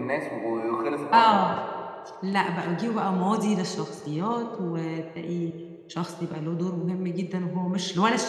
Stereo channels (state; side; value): identical; both; correlation 1.00